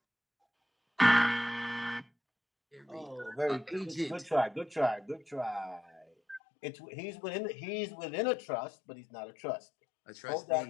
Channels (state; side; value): drops out; right; at 6.4 s